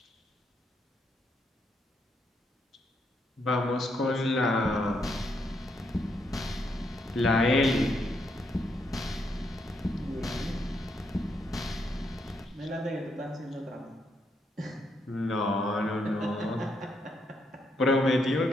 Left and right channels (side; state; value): both; normal; correlation 0.77